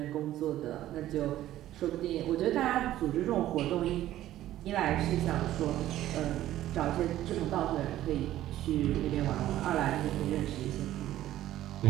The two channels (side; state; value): left; quieter; 13.6 dB